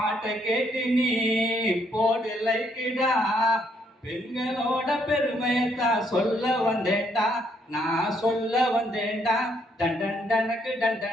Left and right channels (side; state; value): both; normal; correlation 0.71